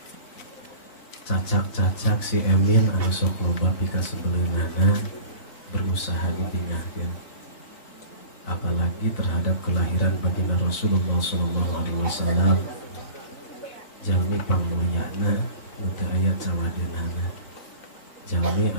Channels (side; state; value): right; late; 4.1 ms